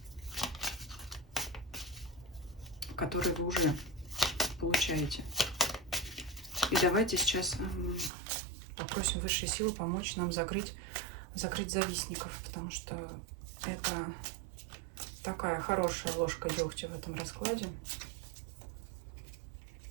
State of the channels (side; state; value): left; drops out; at 8.1 s